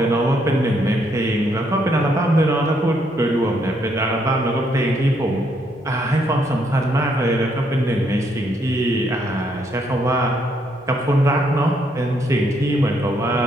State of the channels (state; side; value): noise; right; hum, 27 dB below the sound